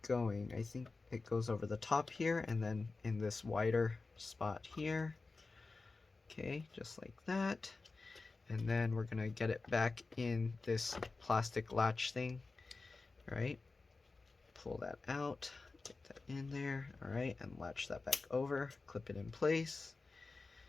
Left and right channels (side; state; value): right; quieter; 3.8 dB